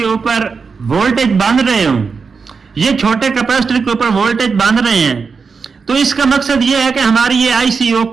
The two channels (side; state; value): left; quieter; 5.2 dB